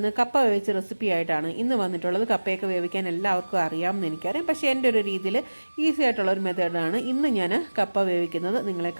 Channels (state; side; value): inverted; both; correlation -1.00